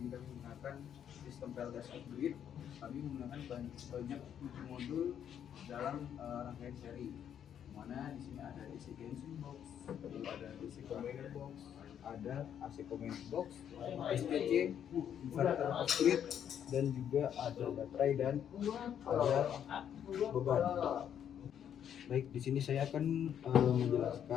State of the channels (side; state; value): right; quieter; 9.2 dB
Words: kami menggunakan sistem PLTS off-grid. Kami menggunakan banyak 7 modul dalam rangkaian seri. Mana di sini ada DC Genshin box, lalu ada DC combiner box, ada AC combiner box, STC, inverter off-grid, dan juga ada baterai dan ada beban. Baik, di sini saya akan